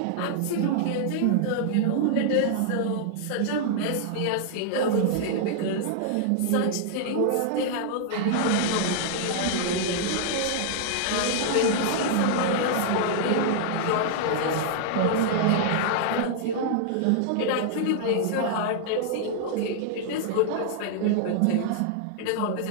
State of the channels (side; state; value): both; different; correlation -0.01